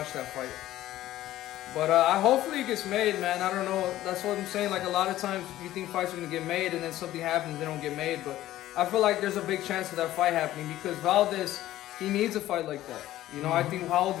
that fight? But hopefully it gets made, man. I don't know. That's what I'm saying. Like, a lot of times you think fights are going to get made and then something happens, they don't get made. But I feel like there's a big chance of that fight happening because Valdez, he needs a fight like that. You know, I think, how old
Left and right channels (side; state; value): right; quieter; 14.4 dB